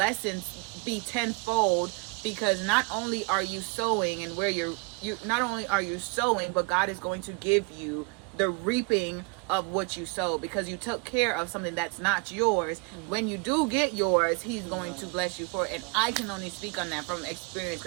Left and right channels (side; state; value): left; quieter; 31.2 dB